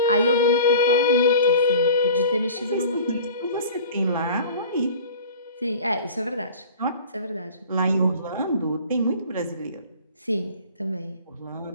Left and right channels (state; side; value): inverted; both; correlation -0.42